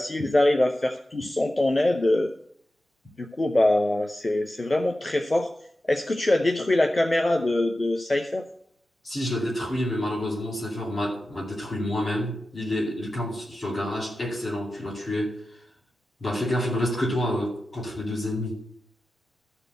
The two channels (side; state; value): both; normal; correlation 0.93